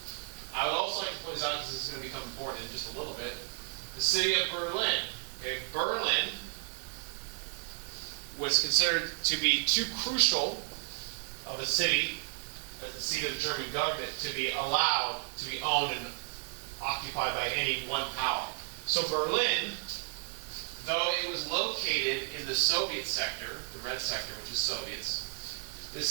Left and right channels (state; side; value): silent; left; 56 dB below the other